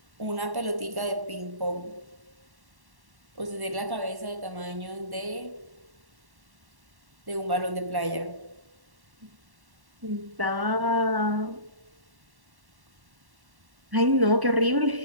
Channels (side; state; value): left; late; 1.1 ms